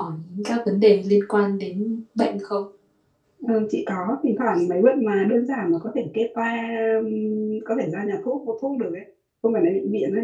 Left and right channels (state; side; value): identical; both; correlation 1.00